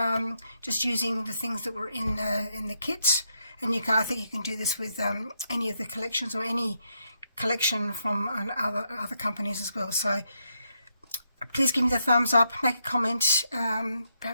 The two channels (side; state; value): both; inverted; correlation -0.80